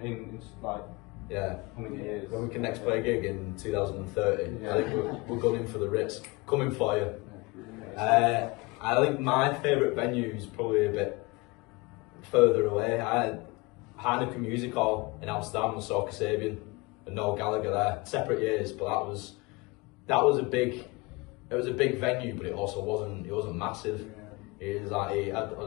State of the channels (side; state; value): right; quieter; 24.9 dB